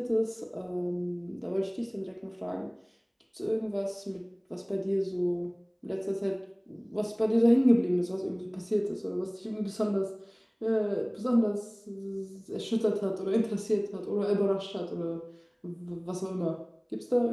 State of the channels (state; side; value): identical; both; correlation 1.00